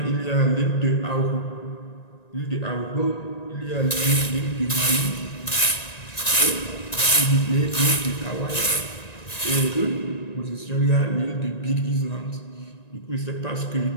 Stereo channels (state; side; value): late; right; 1.9 ms